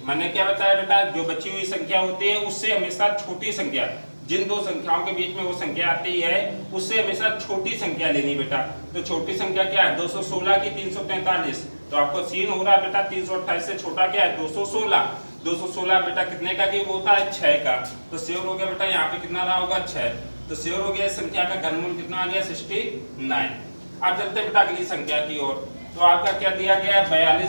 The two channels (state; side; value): inverted; both; correlation -1.00